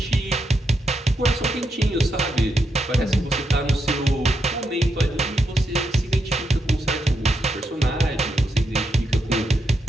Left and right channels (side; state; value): both; normal; correlation 0.82